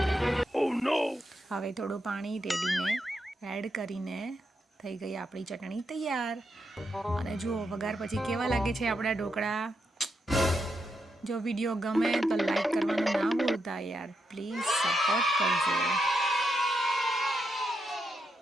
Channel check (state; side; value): normal; both; correlation 0.83